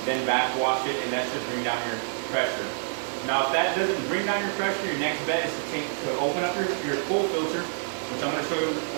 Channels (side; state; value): left; silent; digital silence